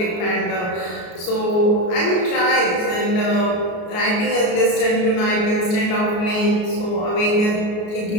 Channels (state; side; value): late; right; 33 ms